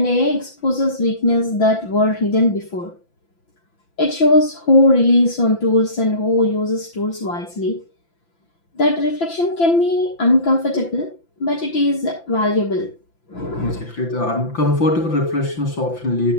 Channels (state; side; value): late; right; 5.9 ms